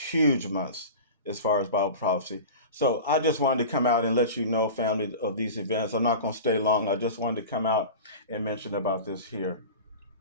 months as far as Bible prophecy. So I just wanted to come out and let you know, family, of these events. I'm not going to stay long. I just wanted to come out and mention about this here.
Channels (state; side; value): inverted; both; correlation -0.33